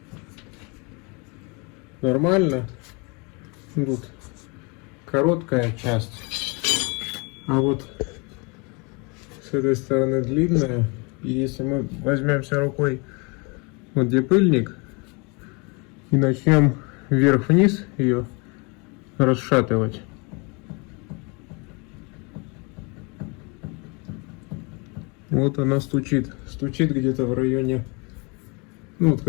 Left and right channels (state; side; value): quieter; right; 30.6 dB